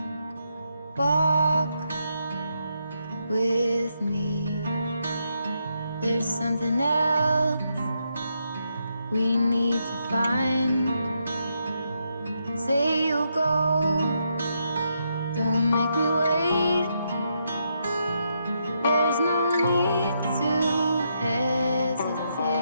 Walk with me. There's something else we need to find. Say you'll go, don't make me wait. There's no need to hesitate.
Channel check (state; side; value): inverted; both; correlation -0.80